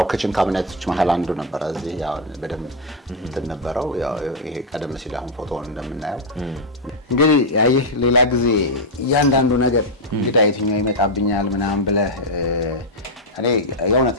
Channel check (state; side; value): normal; both; correlation 0.00